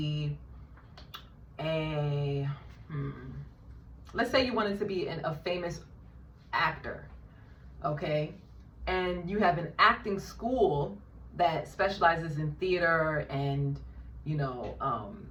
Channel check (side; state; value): both; identical; correlation 1.00